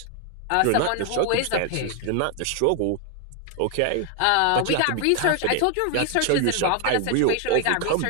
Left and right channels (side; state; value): both; different; correlation 0.00